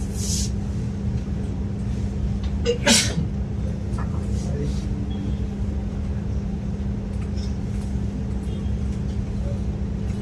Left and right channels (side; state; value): both; identical; correlation 1.00